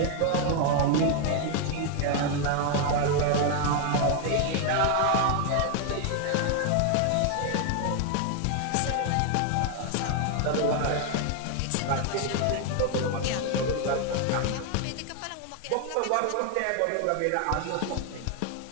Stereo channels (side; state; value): both; different; correlation 0.00